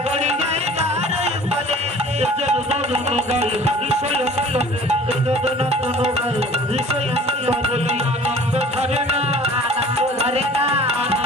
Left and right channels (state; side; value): normal; both; correlation 0.47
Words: গড়ি যাই তাহার